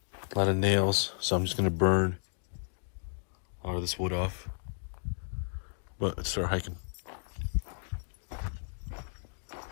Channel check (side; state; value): right; silent; digital silence